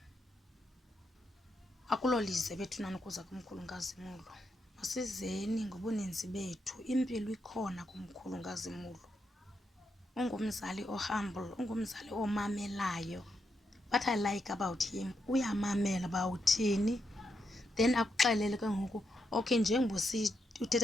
akulolize bethunani ukuza kumkhulu kaZimulo. Masizeni ngobuninzi bethu. Impilo ikhona kumkhulu kaZimulo. Ungumzali ohumble, ungumzali omamelayo. What I like about him, uyamamela bawuthini, then akuxelele ke ngoku okay njengoba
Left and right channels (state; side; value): normal; both; correlation 0.82